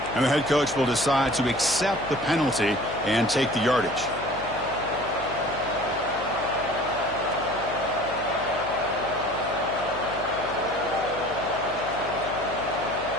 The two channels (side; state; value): left; noise; hum, 14 dB below the sound